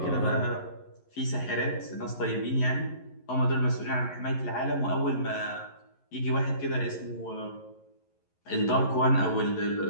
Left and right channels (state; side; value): late; right; 11 ms